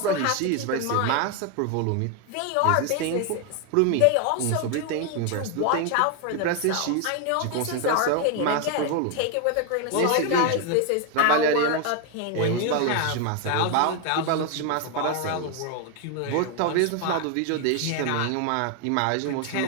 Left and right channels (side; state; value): both; different; correlation 0.01